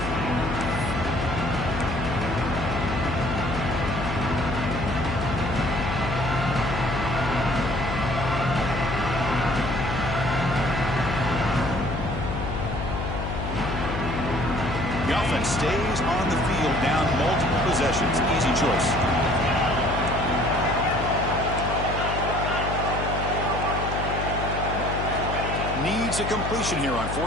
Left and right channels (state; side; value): noise; left; hum, 4 dB below the sound